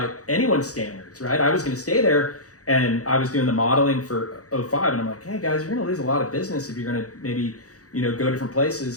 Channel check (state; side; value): late; right; 0.66 ms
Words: anyone's standards, right? I was going to stay there, and I was doing the modeling for 05, and I'm like, hey guys, you're going to lose a lot of business if you're going to maybe, go different